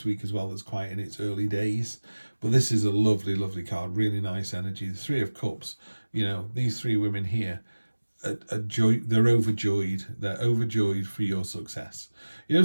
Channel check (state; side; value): inverted; both; correlation -1.00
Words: week as well that's quite in its early days. But this is a lovely, lovely card. Really nice energy. The 3 of Cups. You know, these 3 women here they're overjoyed. They're overjoyed for your success. You know,